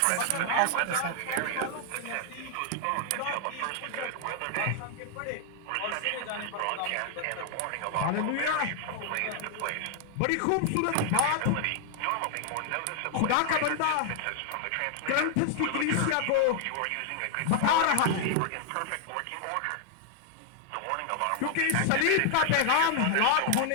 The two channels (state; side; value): different; both; correlation 0.00